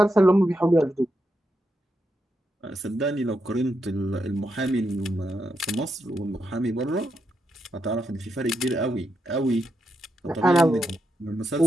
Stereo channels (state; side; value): normal; both; correlation 0.83